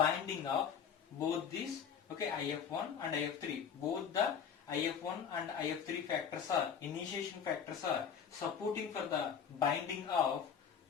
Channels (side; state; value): right; quieter; 7.5 dB